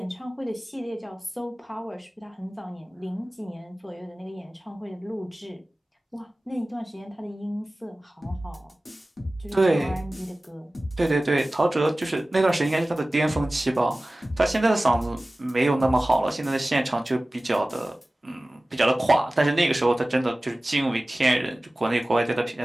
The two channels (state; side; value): normal; both; correlation 0.97